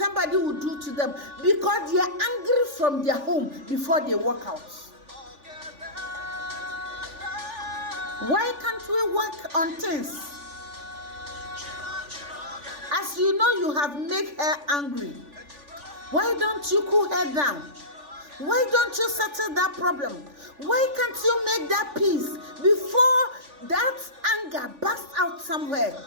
will do to them because they are angry from their home before they walk out. Why can't we work on things? As you know, you have made her angry. Why don't you cool her down? Why don't you settle that problem? Why can't you make that peace before that anger bursts out somewhere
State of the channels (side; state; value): left; late; 3.5 ms